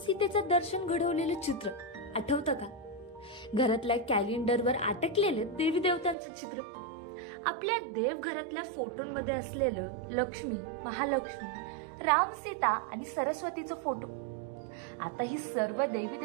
दर्शन घडवलेलं चित्र आठवतं का? घरातल्या कॅलेंडरवर अटकलेलं देवी देवतांचं चित्र, आपल्या देवघरातल्या फोटोंमध्ये असलेलं लक्ष्मी, महालक्ष्मी, राम, सीता आणि सरस्वतीचं फोटो. आता ही सर्व देवी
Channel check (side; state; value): left; drops out; at 6.2 s